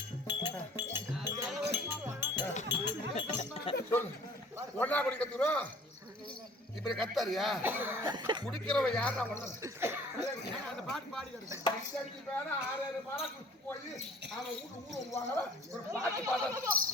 சொல்லு ஒன்னா குடிக்க தூரம் இப்படி கத்தாரியா குடிக்கிறவன் யாரா அந்த பாட்டு பாடி பேர 6 மாதம் குடிச்சு போய் அவன் ஊரு வாங்கல ஒரு பாட்டு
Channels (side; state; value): both; normal; correlation 0.50